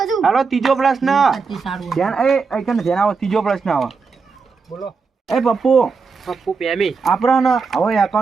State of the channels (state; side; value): quieter; left; 4.9 dB